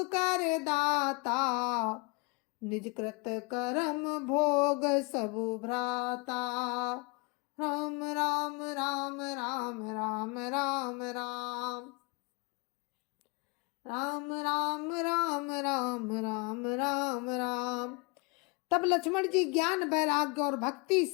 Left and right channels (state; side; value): quieter; right; 30.5 dB